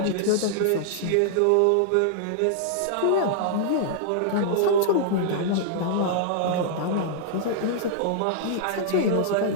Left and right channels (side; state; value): both; different; correlation -0.01